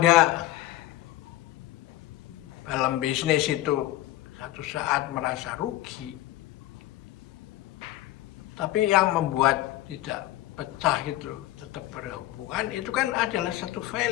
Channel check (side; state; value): right; quieter; 15.6 dB